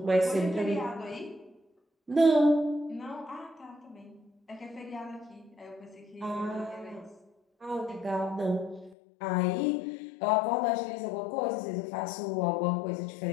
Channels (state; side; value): drops out; right; at 9.0 s